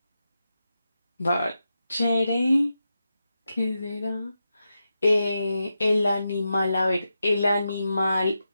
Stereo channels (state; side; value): inverted; both; correlation -0.89